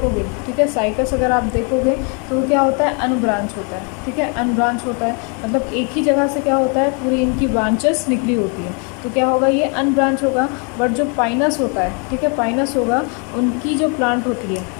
ठीक है, साइकस अगर आप देखोगे तो वो क्या होता है, अनब्रांच होता है। ठीक है, अनब्रांच होता है मतलब एक ही जगह से क्या होता है, पूरी इनकी ब्रांचेस निकली होती है, तो क्या होगा, ये अनब्रांच होगा। बट जो पाइनस होता है, ठीक है, पाइनस होगा, उनकी जो प्लांट होती है,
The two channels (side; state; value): right; quieter; 36.4 dB